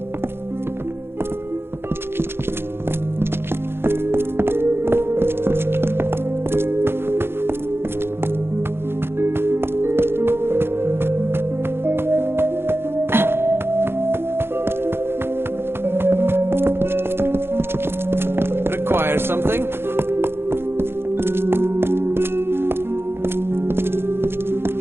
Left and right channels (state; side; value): late; left; 0.11 ms